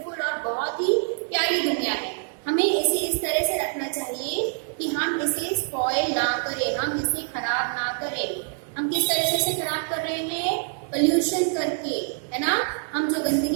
और बहुत ही प्यारी दुनिया है। हमें इसे इस तरह से रखना चाहिए कि हम इसे स्पॉइल ना करें, हम इसे खराब ना करें। हम किस तरह से इसे खराब कर रहे हैं? पोल्यूशन करके, है ना। हम जो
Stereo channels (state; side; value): silent; left; 58 dB below the other